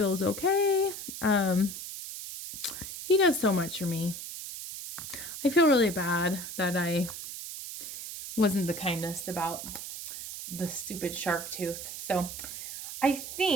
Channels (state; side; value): noise; right; hiss, 9 dB below the sound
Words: okay. He does so much for me. I feel really bad that I wasn't the kindest about the stupid shark tooth. So I